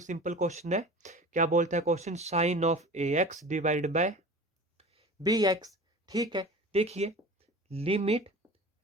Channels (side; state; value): both; normal; correlation 0.38